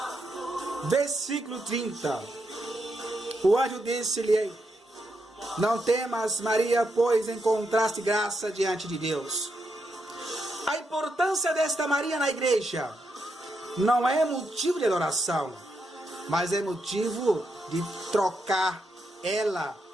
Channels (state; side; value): normal; both; correlation 0.82